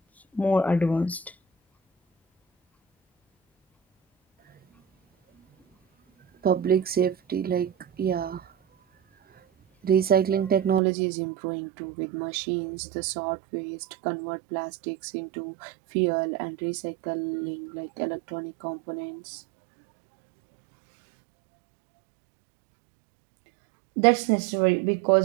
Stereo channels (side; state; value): left; drops out; at 10.8 s